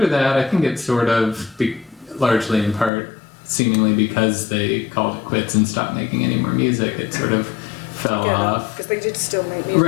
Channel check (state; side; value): drops out; right; at 2.9 s